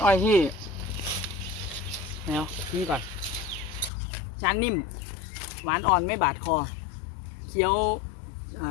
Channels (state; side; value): drops out; right; at 3.9 s